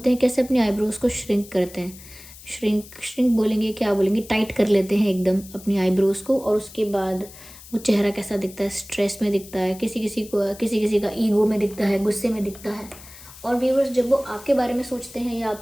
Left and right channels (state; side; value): noise; left; hiss, 18 dB below the sound